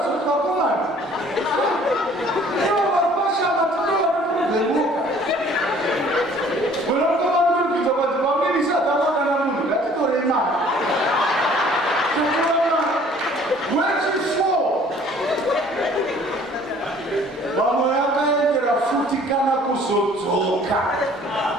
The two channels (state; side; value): normal; both; correlation 0.54